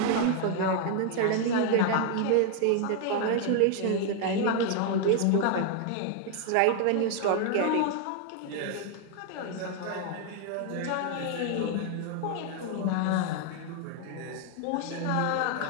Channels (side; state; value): both; different; correlation 0.00